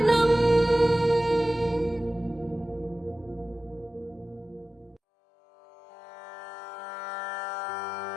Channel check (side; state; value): right; drops out; at 5.0 s